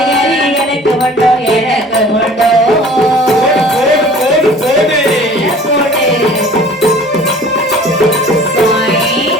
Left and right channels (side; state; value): both; normal; correlation 0.48